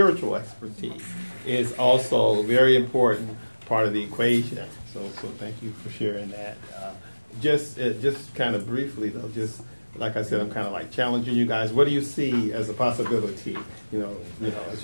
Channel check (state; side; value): inverted; both; correlation -1.00